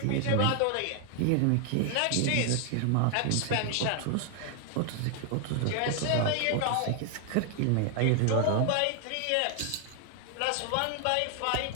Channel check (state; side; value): different; both; correlation 0.00